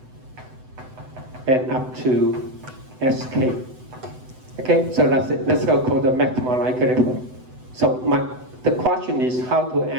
and up to sk. Okay, so that's it. Let's go call the maximum likelihood. So the question is how to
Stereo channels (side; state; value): left; late; 7.9 ms